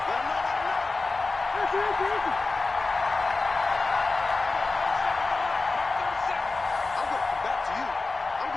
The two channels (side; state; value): right; quieter; 3.6 dB